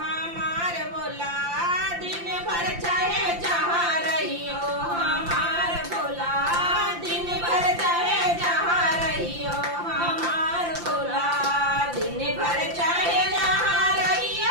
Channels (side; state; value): left; late; 5.8 ms